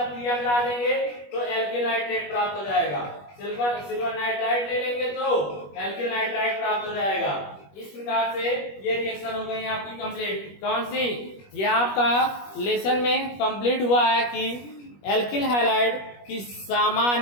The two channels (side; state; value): right; late; 21 ms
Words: क्रिया करा देंगे तो एल्किल नाइट्रेट प्राप्त हो जाएगा। सिल्वर नाइट्राइट ले लेंगे तो एल्किल नाइट्राइट प्राप्त हो जाएगा। इस प्रकार से ये रिएक्शन हो गई आपकी कंप्लीट। कौन सी? ये आपका लेसन में कंप्लीट हुआ है कि एल्किल हैलाइड की